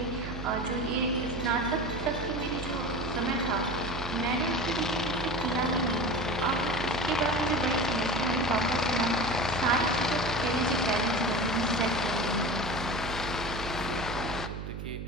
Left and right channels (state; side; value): noise; right; hum, 7 dB below the sound